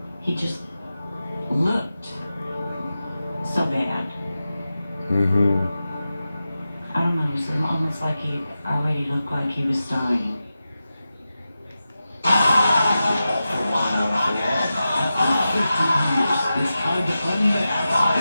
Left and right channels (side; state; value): both; inverted; correlation -0.92